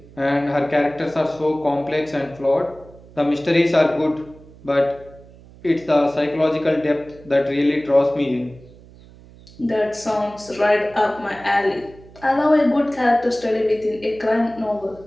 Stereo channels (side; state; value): right; noise; hum, 22 dB below the sound